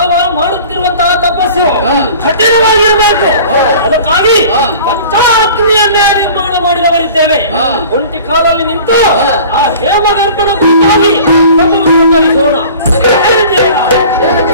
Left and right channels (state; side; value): inverted; both; correlation -0.44